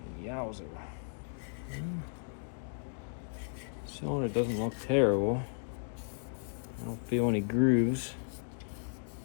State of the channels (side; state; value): right; silent; digital silence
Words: Yowzer. Cylinder doesn't look terrible. I don't feel any grooves.